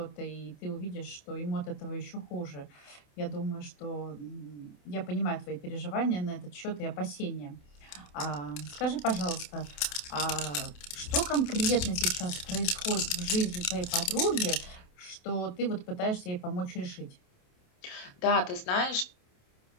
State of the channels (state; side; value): late; right; 28 ms